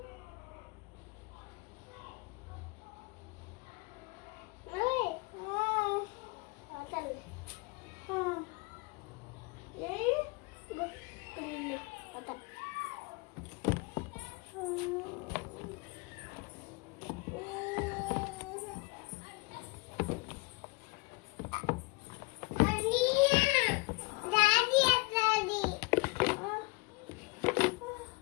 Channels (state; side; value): quieter; right; 27.7 dB